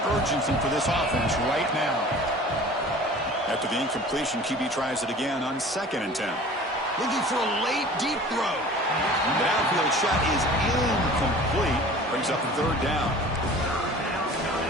urgency for this offense right now. After the incompletion, QB tries it again on 2nd and 10. Looking for a late, deep throw. The downfield shot is incomplete. Brings up the third down.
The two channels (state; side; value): normal; both; correlation 0.44